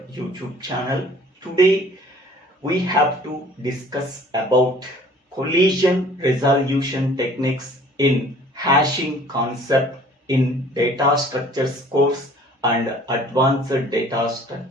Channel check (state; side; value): normal; both; correlation 0.52